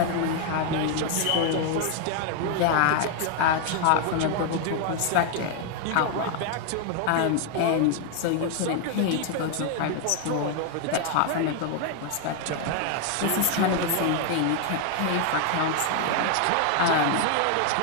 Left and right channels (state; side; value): different; both; correlation 0.01